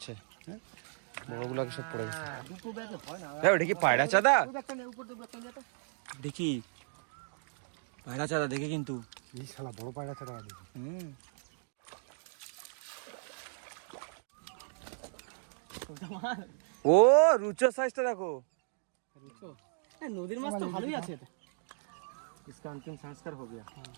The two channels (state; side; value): silent; left; digital silence